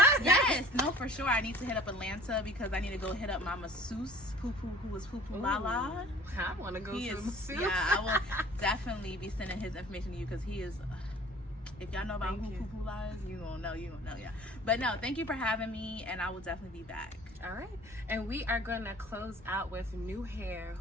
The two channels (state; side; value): normal; both; correlation 0.48